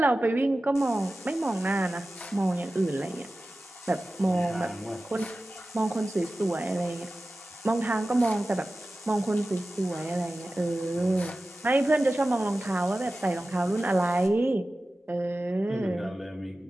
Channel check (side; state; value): both; normal; correlation 0.95